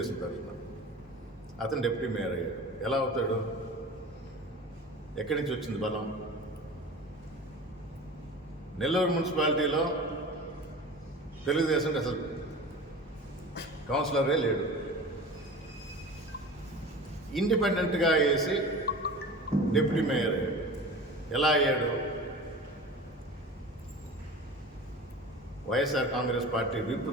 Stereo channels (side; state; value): both; normal; correlation 0.36